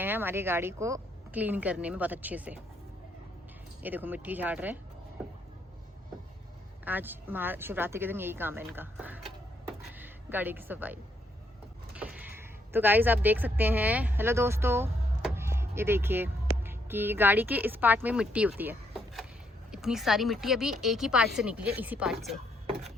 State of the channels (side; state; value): both; normal; correlation 0.73